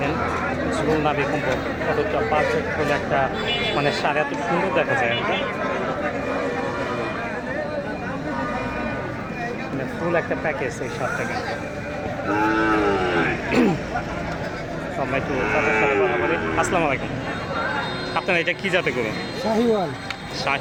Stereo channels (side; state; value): both; identical; correlation 1.00